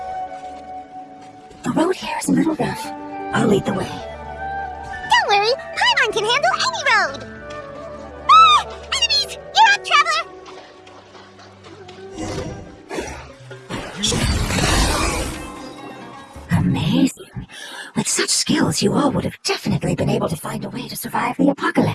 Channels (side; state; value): both; identical; correlation 1.00